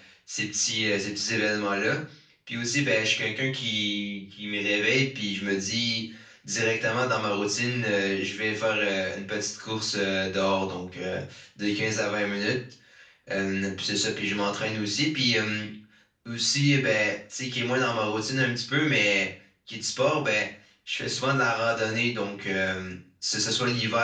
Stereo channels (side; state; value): both; identical; correlation 1.00